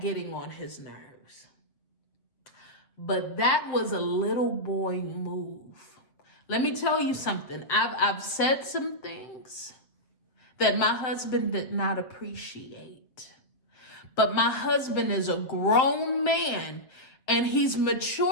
on his nerves. But that was a little boy move. Let me tell you something. I've said some things that my husband did not appreciate. But my husband is a grown man, and he's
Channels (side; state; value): right; late; 7.7 ms